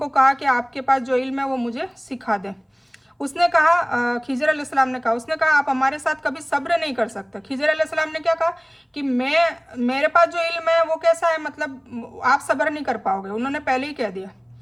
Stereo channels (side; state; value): both; identical; correlation 1.00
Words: कहा कि आपके पास जो इल्म है वो मुझे सिखा दें। उसने कहा, खिजर अलैहिस्सलाम ने कहा, उसने कहा आप हमारे साथ कभी सब्र नहीं कर सकते। खिजर अलैहिस्सलाम ने क्या कहा कि मेरे पास जो इल्म है वो कैसा है, मतलब आप सब्र नहीं कर पाओगे। उन्होंने पहले ही कह दिया।